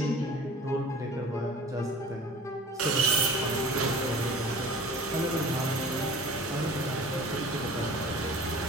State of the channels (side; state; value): both; normal; correlation 0.43